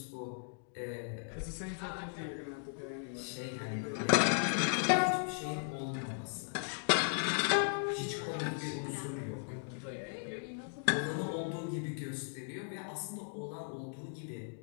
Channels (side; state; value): right; silent; digital silence